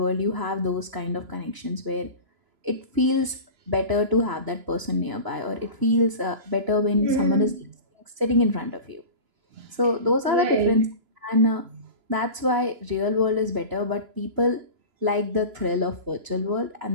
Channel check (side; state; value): left; late; 3.0 ms